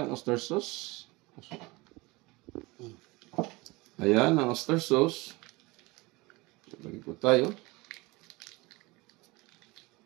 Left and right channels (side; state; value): left; quieter; 23.3 dB